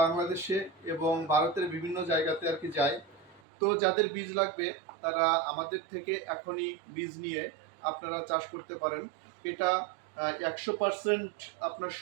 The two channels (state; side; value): drops out; left; at 3.4 s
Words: বাংলাদেশে এবং ভারতের বিভিন্ন জায়গাতে আর কি যায়। তো যাদের বীজ লাগবে তারা আমাদের থেকে এখনই বীজ নিয়ে আপনারা চাষ করতে পারেন। এটা 100% আপনার